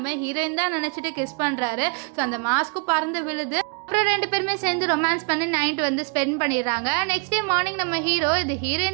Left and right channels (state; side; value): quieter; left; 34.7 dB